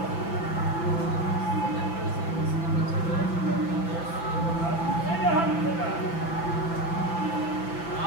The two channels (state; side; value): late; right; 5.9 ms